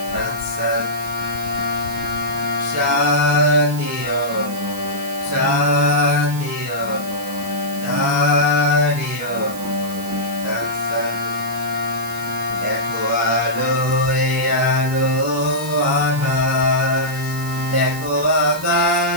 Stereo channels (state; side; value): noise; right; hiss, 14 dB below the sound